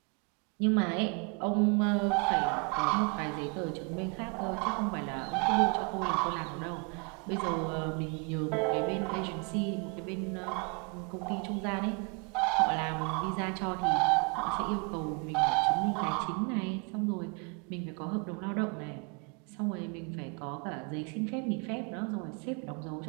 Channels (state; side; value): quieter; left; 32.9 dB